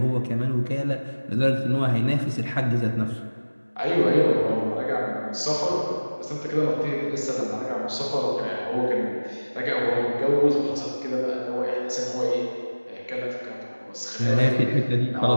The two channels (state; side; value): inverted; both; correlation -1.00